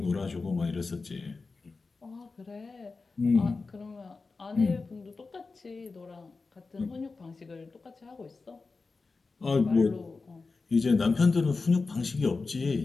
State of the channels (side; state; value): right; quieter; 4.1 dB